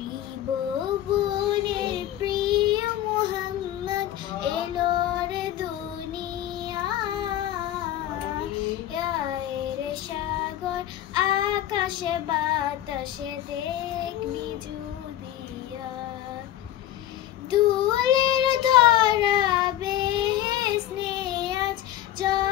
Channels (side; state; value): right; quieter; 12.6 dB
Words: প্রিয় মুহাম্মদ এলো রে দুনিয়ায়, রে সাগর আকাশে বাতাসে দেখবি যদি দুলের ধরা বেহেশতে আজ